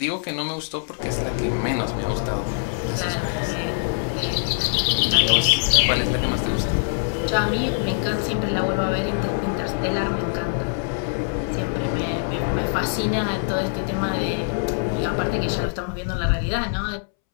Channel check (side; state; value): right; silent; 63 dB below the other